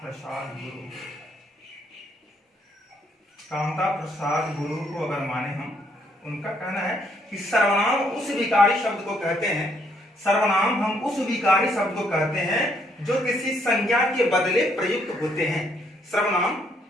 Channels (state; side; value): normal; both; correlation 0.70